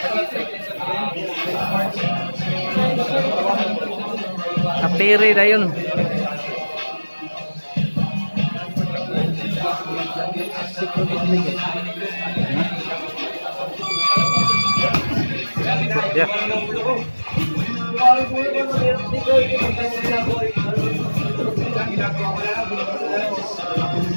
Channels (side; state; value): both; inverted; correlation -1.00